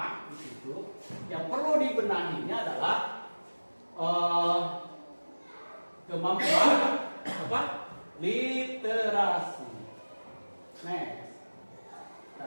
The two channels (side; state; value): both; inverted; correlation -1.00